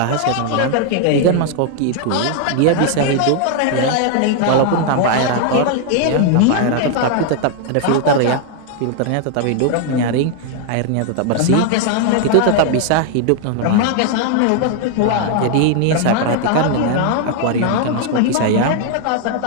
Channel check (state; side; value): different; both; correlation 0.00